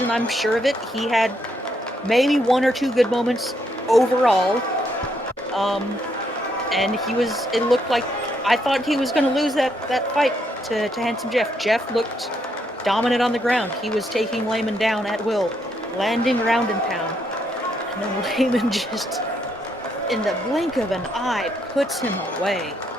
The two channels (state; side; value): normal; both; correlation 0.75